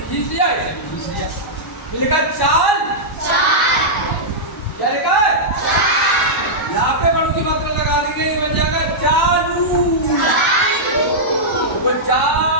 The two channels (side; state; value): both; normal; correlation -0.10